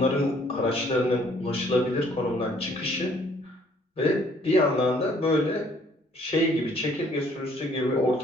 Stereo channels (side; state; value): both; normal; correlation 0.61